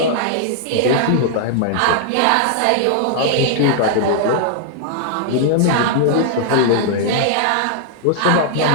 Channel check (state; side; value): different; both; correlation -0.01